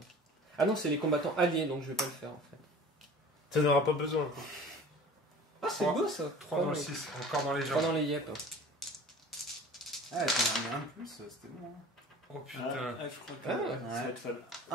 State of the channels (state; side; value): normal; both; correlation 0.43